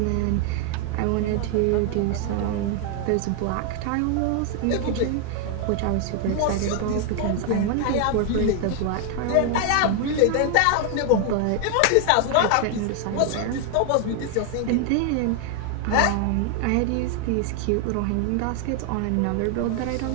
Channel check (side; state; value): both; different; correlation 0.00